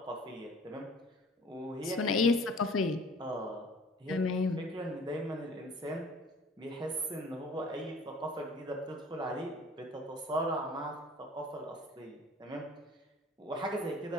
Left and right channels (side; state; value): both; normal; correlation 0.49